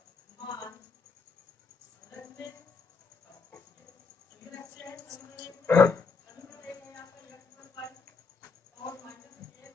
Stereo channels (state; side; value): quieter; right; 4.7 dB